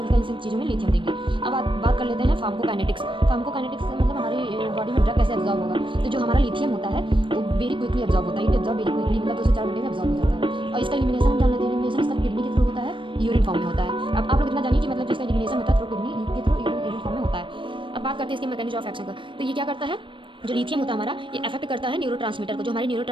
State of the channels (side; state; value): left; late; 0.24 ms